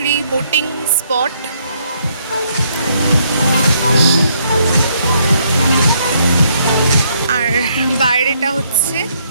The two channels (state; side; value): inverted; both; correlation -0.71